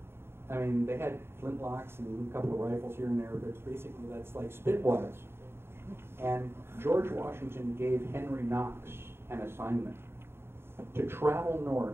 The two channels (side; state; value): left; late; 0.11 ms